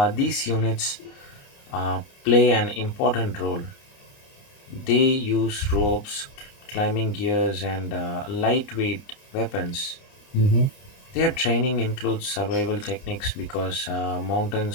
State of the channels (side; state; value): right; late; 29 ms